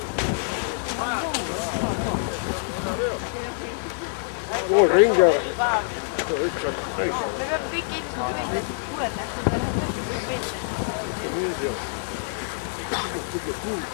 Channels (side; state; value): right; silent; 60 dB below the other